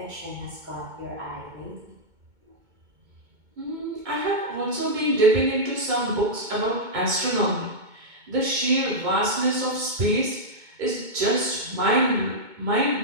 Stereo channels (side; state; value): left; late; 2.2 ms